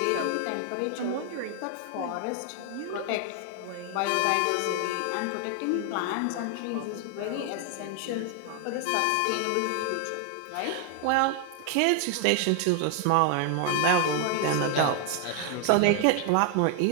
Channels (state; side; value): different; both; correlation 0.00